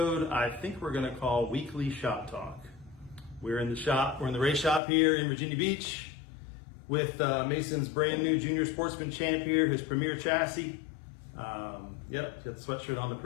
I think we're gonna call Weekly Shop Talk. We're in the shop, we're in the race shop here in Virginia Beach with Mason's brand new Junior Sportsman Champ here, his premier chassis. Yep, got the sweatshirt on to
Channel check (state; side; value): drops out; right; at 4.8 s